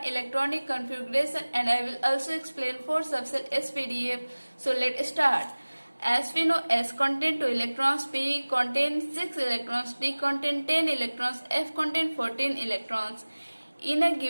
electronic configuration and I will also explain 4 subcell SPDF. So let's start. As we know, S contains 2 electrons, P contains 6 electrons, D contains 10 electrons, F contains 14 electrons. In a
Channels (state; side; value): inverted; both; correlation -1.00